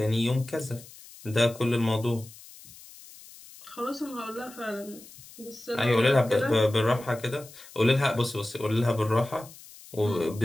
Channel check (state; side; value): noise; left; hiss, 20 dB below the sound